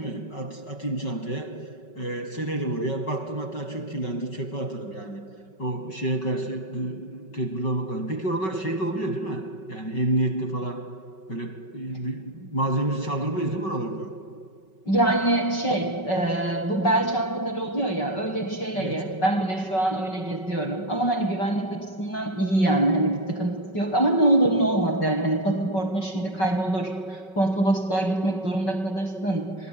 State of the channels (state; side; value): late; right; 5.3 ms